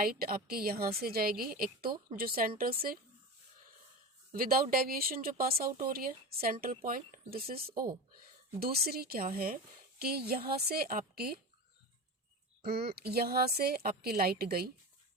आपके यहाँ से जाएगी, एक तो जो सेंटर से विदाउट डेविएशन जो पास आउट हो रही है, central point, this is O। दूसरी क्या है कि यहाँ से आपकी लाइट गई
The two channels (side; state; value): both; normal; correlation 0.27